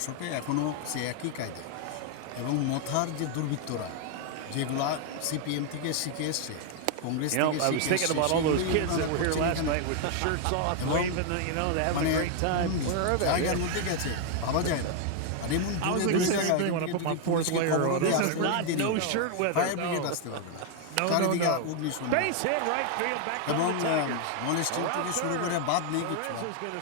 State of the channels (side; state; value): both; different; correlation 0.00